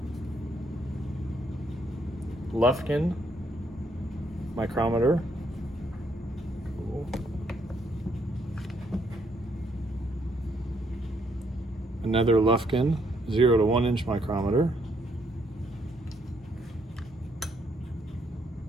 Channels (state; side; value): normal; both; correlation 0.72